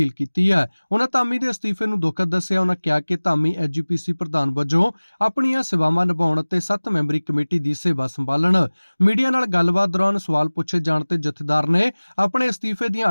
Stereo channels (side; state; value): both; inverted; correlation -1.00